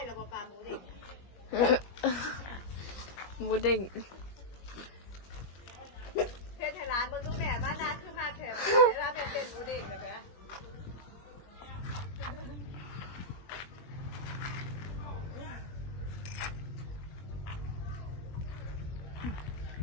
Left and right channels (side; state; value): right; late; 21 ms